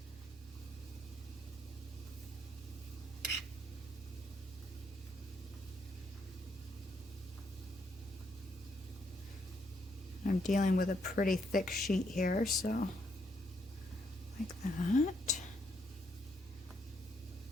I'm dealing with a pretty thick sheet here, so like that.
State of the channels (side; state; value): both; normal; correlation 0.74